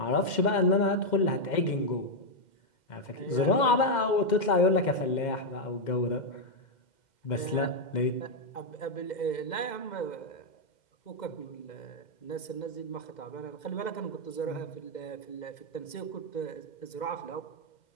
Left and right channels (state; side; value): late; right; 2.1 ms